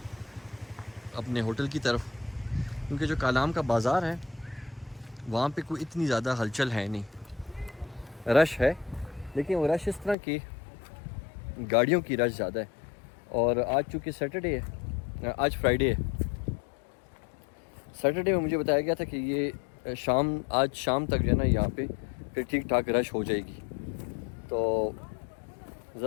अपने होटल की तरफ। क्योंकि जो कालाम का बाज़ार है वहाँ पे कोई इतनी ज़्यादा हलचल है नहीं, रश है लेकिन वो रश इस तरह की गाड़ियों की रश ज़्यादा है। और आज चूँकि सैटरडे है, आज फ्राइडे है, सैटरडे में मुझे बताया गया था कि ये आज शाम तक जो है ना यहाँ पे फिर ठीक ठाक रश हो जाएगी। तो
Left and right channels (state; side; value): drops out; right; at 10.2 s